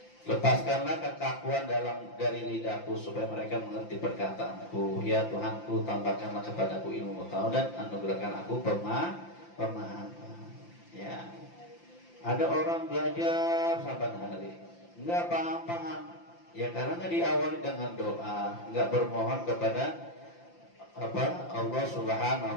Lepaskanlah kekakuan dari lidahku supaya mereka mengerti perkataanku. Ya Tuhanku, tambahkanlah kepadaku ilmu pengetahuan dan anugerahkan aku pemahaman. Ya. Ada orang belajar saban hari, nggak paham. Ya karena diawali dengan doa, nggak bermohon kepada Allah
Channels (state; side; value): late; right; 5.8 ms